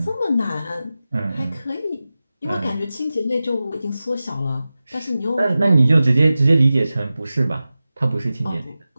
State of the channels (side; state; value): both; inverted; correlation -0.95